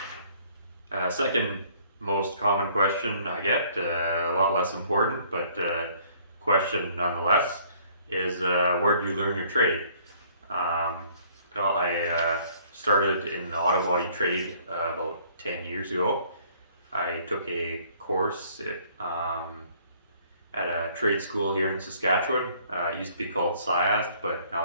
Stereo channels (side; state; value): both; inverted; correlation -0.59